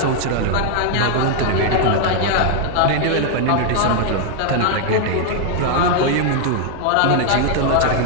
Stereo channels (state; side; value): different; both; correlation 0.00